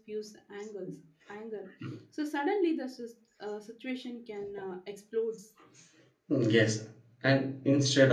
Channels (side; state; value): both; identical; correlation 1.00